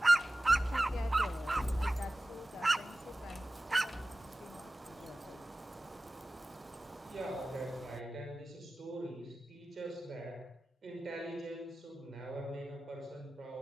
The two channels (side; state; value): both; normal; correlation 0.96